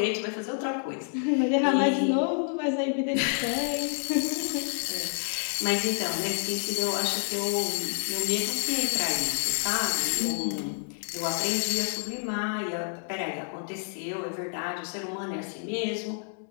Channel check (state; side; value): silent; right; 57 dB below the other